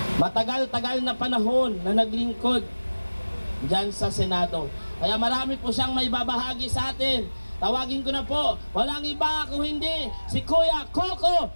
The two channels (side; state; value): both; inverted; correlation -1.00